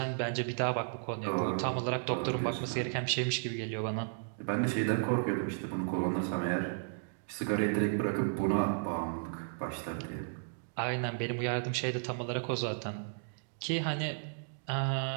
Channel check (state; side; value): silent; left; digital silence